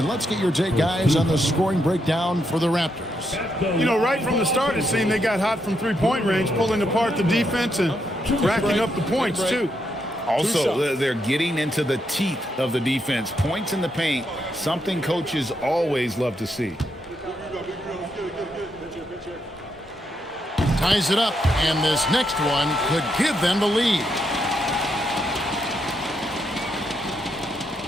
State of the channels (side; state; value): both; normal; correlation 0.80